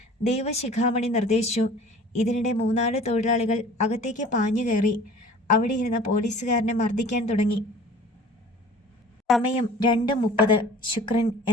ദേവശിഖാമണി നിർദ്ദേശിച്ചു. ഇതിനിടെ 3-4 തൊഴിലാളികൾ അകത്തേക്ക് പാഞ്ഞു കയറി. അവിടെ ഇരുന്ന പോലീസുകാരനെ മർദ്ദിക്കാൻ തുടങ്ങി. സമയം 2:30. ശുക്രൻ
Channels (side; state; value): both; normal; correlation 0.46